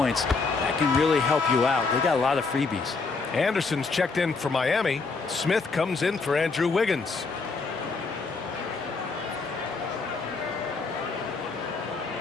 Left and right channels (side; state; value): right; quieter; 4.3 dB